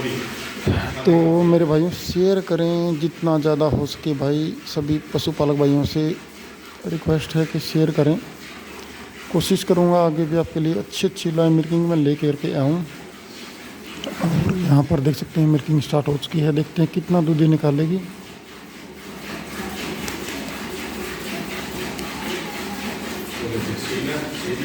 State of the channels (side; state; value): both; identical; correlation 1.00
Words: भी। तो मेरे भाइयों शेयर करें जितना ज़्यादा हो सके भाई। सभी पशुपालक भाइयों से रिक्वेस्ट है कि शेयर करें। कोशिश करूँगा आगे भी आपके लिए अच्छी अच्छी लाइव मिल्किंग में ले करके आऊँ। और यहाँ पर देख सकते हैं मिल्किंग स्टार्ट हो चुकी है। देखते हैं कितना दूध ये निकालेगी।